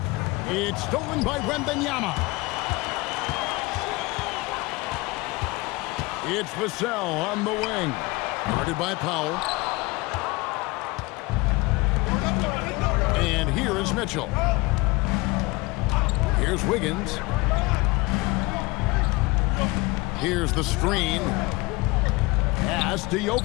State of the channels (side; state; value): right; quieter; 23.6 dB